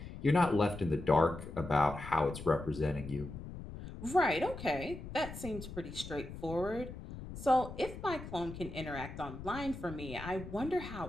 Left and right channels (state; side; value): noise; left; rumble, 11 dB below the sound